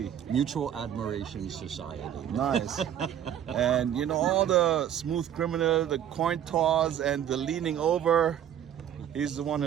Mutual admiration society. Nice. And you know, all the Smooth Criminal, the coin toss, and the leaning over, he's the one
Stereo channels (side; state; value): left; quieter; 10.0 dB